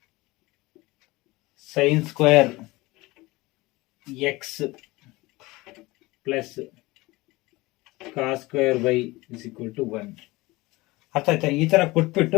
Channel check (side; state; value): right; quieter; 21.2 dB